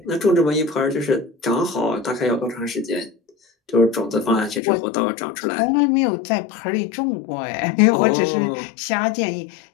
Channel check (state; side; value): drops out; right; at 4.6 s